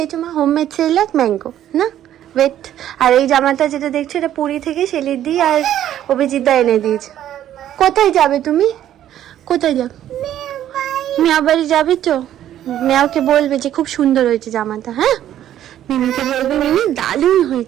মা? হোমমেড সেরেল্যাক ম্যাঙ্গো না ওয়েট। আর এই জামাটা যেটা দেখছো এটা পুরী থেকে সেলিদি আর অভিজিৎদা এনে দিয়েছে। কোথায় যাবে তুমি, কোথায় যাবে? মিয়া বাড়ি যাবে তো? মিয়াকে বলবে যে খুব সুন্দর হয়েছে জামাটা। হ্যাঁ মিমিকে বলবে মিমি দারুণ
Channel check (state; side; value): quieter; left; 11.6 dB